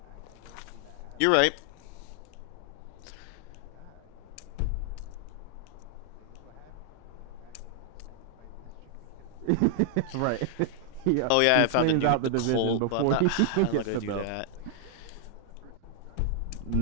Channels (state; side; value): different; both; correlation 0.00